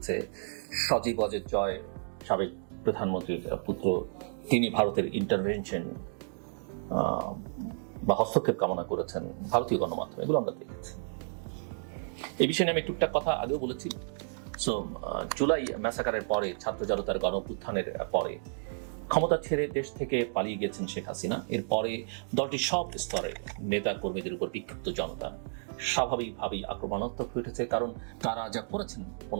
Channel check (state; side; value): silent; left; digital silence